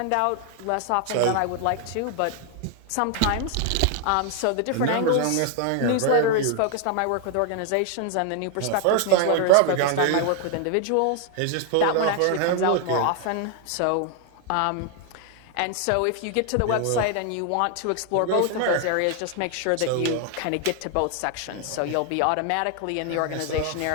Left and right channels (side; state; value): both; different; correlation 0.00